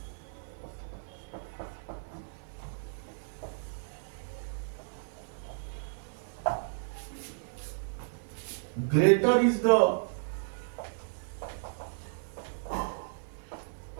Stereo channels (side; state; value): left; silent; digital silence